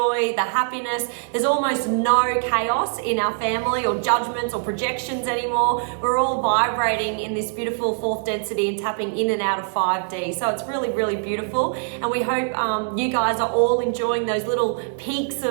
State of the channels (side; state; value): left; silent; 64 dB below the other